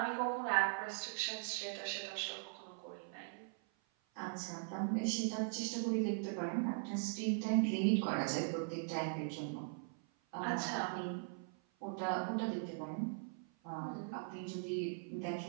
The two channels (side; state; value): left; silent; 51 dB below the other